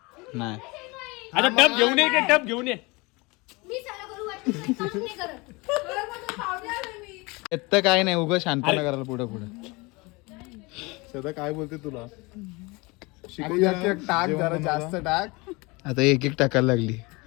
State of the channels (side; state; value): right; quieter; 25.5 dB